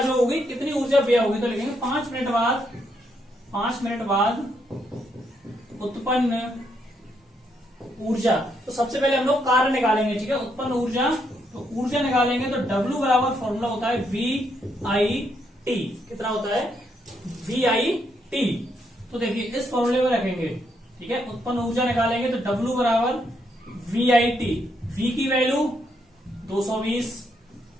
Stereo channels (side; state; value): both; normal; correlation 0.76